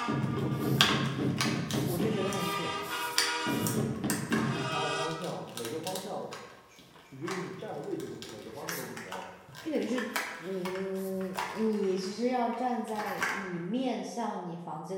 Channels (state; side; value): identical; both; correlation 1.00